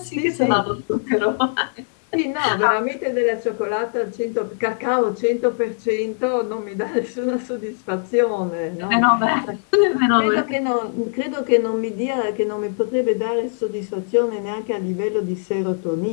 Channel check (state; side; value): silent; right; digital silence